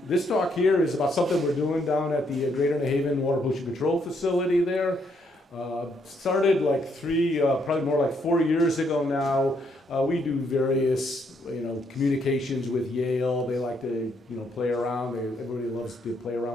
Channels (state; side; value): normal; both; correlation 0.73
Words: this talk here is about something we're doing down at the Greater New Haven Water Pollution Control Facility there. Started like probably more like 4 years ago now. We do various, communications with Yale. They like to, play around. Everybody loves to play